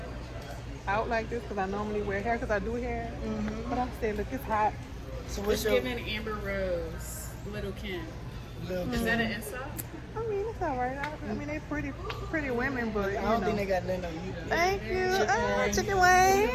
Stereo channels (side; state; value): both; identical; correlation 1.00